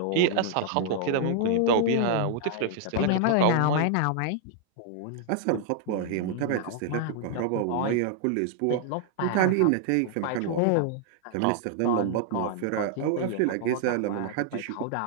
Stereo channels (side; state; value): both; different; correlation -0.01